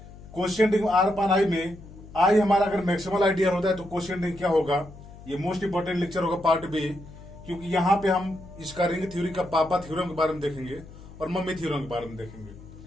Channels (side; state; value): left; noise; hum, 18 dB below the sound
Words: क्वेश्चन रिंग आर पान आई में आई हमारा अगर मैक्सिमल आइडियल होता है तो क्वेश्चन रिंग क्या होगा. ये मोस्ट इंपोर्टेंट लेक्चर होगा पार्ट बी, क्योंकि यहाँ पे हम इसका रिंग थ्योरी का पापा थ्योरम के बारे में देखेंगे और मम्मी थ्योरम के बारे में देखेंगे.